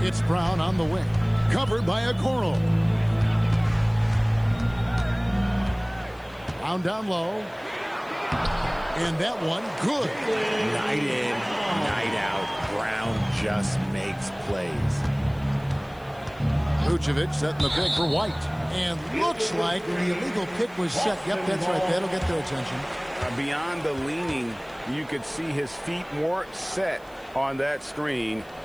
It's Brown on the wing. Covered by Okoro. Brown down low. And that one, good. Night in, night out. Brown just makes plays. Vucevic setting the pick for White. And looks like the illegal pick was set. Yep, that's right. That'll get their attention. Beyond the leaning, you could see his feet more set on that screen.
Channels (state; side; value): noise; left; hiss, 29 dB below the sound